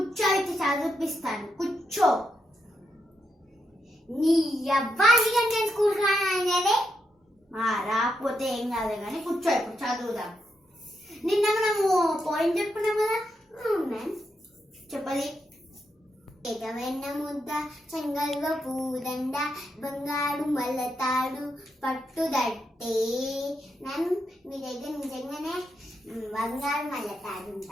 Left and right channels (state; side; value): normal; both; correlation 0.82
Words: చదివిపిస్తాను. కూర్చో. నీ అబ్బాయి నేను స్కూల్ రానదే రాకపోతే ఏం కాదు కానీ కూర్చో, ఇప్పుడు చదువుదాం. నిన్న మనము పాయింట్ చెప్పుకున్నాం కదా మ్యామ్. చెప్పది. ఎగవెన్న ముద్ద చెంగల్వ పూదండ బంగారు మల్లతాడు పట్టుదట్టే. మ్యామ్ మీ దగ్గర నిజంగానే బంగారు మల్లతాడు